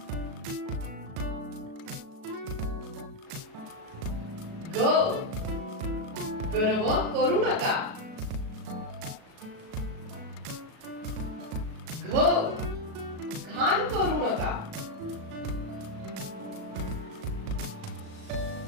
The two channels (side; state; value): left; late; 37 ms